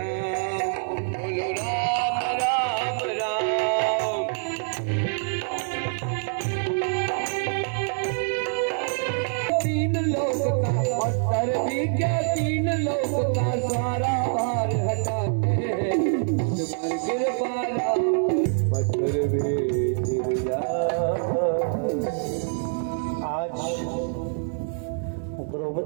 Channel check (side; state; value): left; silent; digital silence